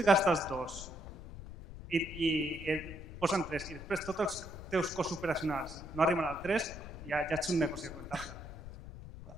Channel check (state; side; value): noise; left; rumble, 12 dB below the sound